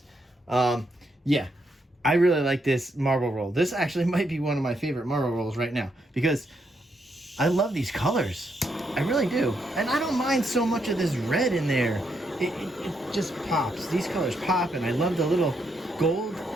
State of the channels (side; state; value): both; normal; correlation 0.78